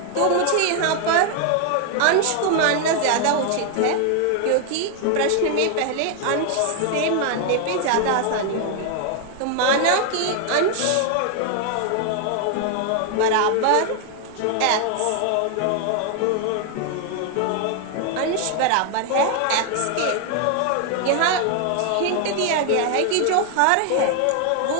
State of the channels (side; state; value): both; different; correlation 0.00